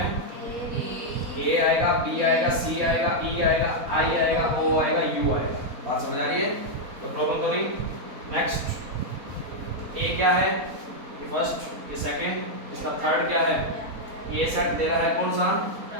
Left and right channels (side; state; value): left; late; 4.1 ms